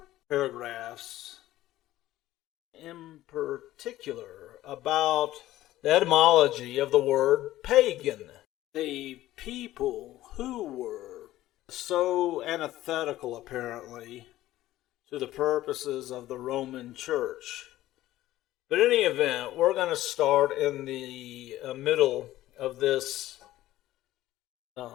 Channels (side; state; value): right; quieter; 15.1 dB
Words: paragraphs, in particular about the etymology of the word pagan. The people who were so antithetical, apparently, to the purposes of the Roman Church. But in any event, we're going to start in the middle of this